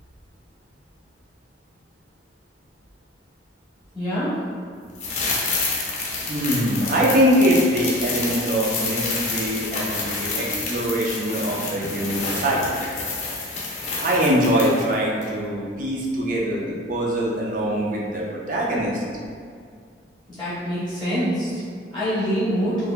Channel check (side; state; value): both; normal; correlation 0.36